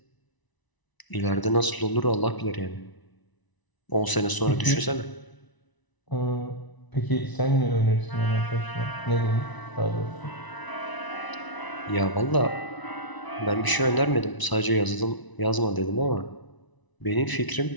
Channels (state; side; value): late; right; 1.0 ms